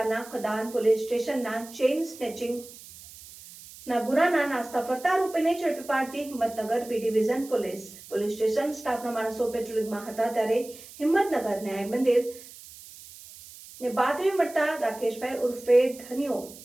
કદાન પોલીસ સ્ટેશનના ચેઇન સ્નેચિંગ ના ગુનાના નાસ્તા ફરતા આરોપીને ઝડપી પાડતી Himmatnagar B division police station સ્ટાફના માણસો પેટ્રોલિંગમાં હતા ત્યારે હિંમતનગર ન્યાય મંદિર ને બાતમી મળતા રાકેશભાઈ ઉર્ફે ધનિયો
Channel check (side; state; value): right; noise; hiss, 18 dB below the sound